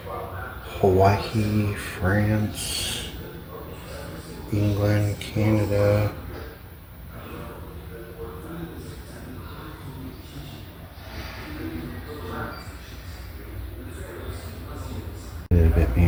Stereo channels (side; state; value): both; identical; correlation 1.00